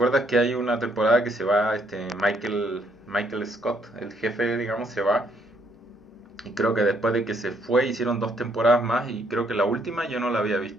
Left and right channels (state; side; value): normal; both; correlation 0.70